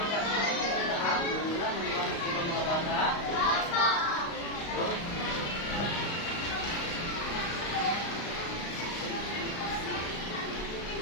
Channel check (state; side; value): late; right; 35 ms